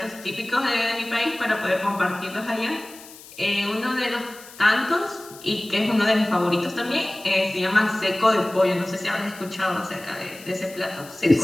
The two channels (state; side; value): noise; left; hiss, 19 dB below the sound